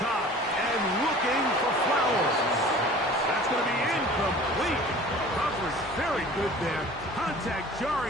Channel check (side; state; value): both; normal; correlation 0.44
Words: and looking for Flowers. That's going to be incomplete. Coverage very good there. Contact